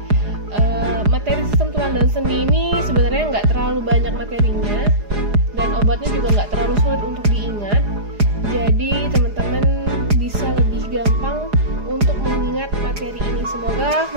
Materi sistem tulang dan sendi ini sebenarnya nggak terlalu banyak materinya, dan obatnya juga nggak terlalu sulit untuk diingat. Jadi teman-teman bisa lebih gampang untuk mengingat materi ini. Semoga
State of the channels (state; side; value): late; left; 4.9 ms